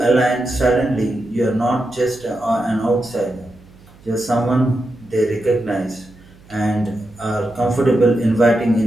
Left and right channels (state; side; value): noise; right; hum, 25 dB below the sound